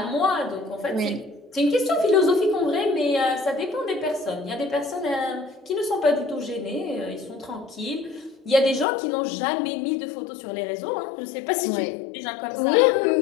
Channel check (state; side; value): drops out; right; at 8.8 s